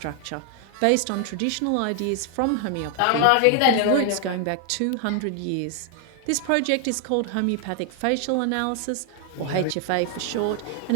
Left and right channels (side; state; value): both; different; correlation 0.00